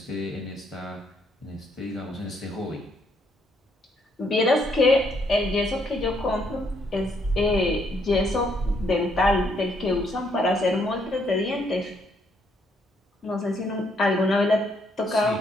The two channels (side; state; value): both; normal; correlation 0.71